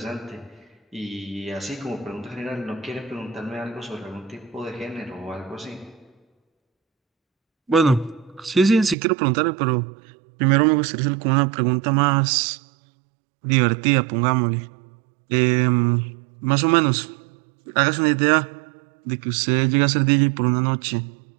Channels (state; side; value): drops out; left; at 9.0 s